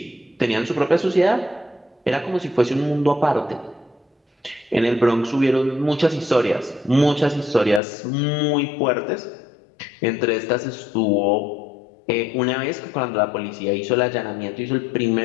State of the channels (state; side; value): drops out; right; at 7.8 s